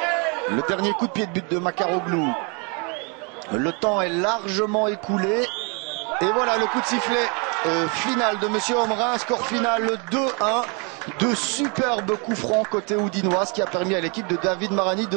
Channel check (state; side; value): quieter; left; 33.3 dB